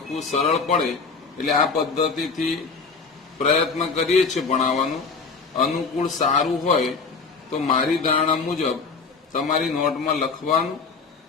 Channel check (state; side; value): quieter; right; 4.7 dB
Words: સરળ પડે એટલે આ પદ્ધતિથી પ્રયત્ન કરીએ છીએ ભણાવવાનું. અનુકૂળ સારું હોય તો મારી ધારણા મુજબ તમારી નોટમાં લખવાનું